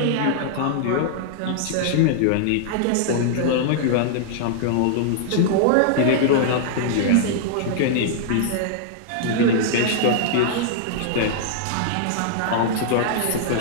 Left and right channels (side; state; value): both; different; correlation -0.01